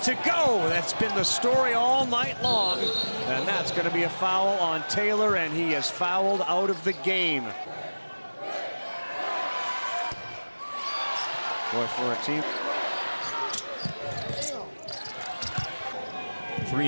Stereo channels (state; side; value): inverted; both; correlation -1.00